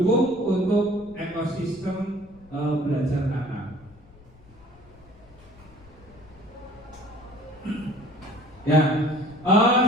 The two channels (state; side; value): noise; left; rumble, 24 dB below the sound